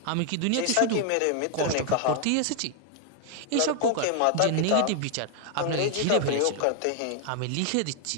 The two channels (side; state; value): both; different; correlation 0.00